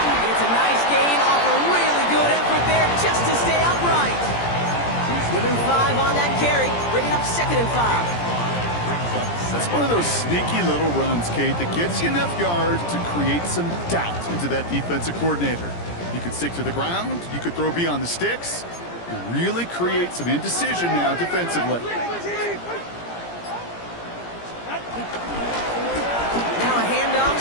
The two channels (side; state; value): right; late; 17 ms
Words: It's a nice gain off a really good effort there just to stay upright. Give him 5 on that carry, bringing up 2nd and 5. That's one of those sneaky little runs, Kate, that gets you enough yards to create some doubt into that defensive coordinator. You could stick to the ground, you could throw beyond the sticks, and really create some indecision now defensively. Now a handoff